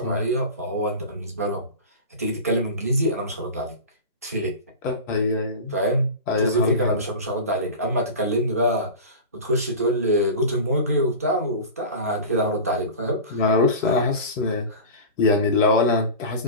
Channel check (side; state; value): both; inverted; correlation -0.30